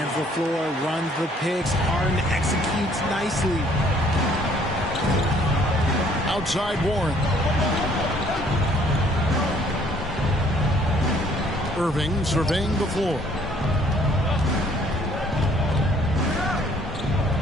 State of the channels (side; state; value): both; normal; correlation 0.60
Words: the floor, runs the picks. Harden executes nicely. Outside Warren. Irving surveying the floor.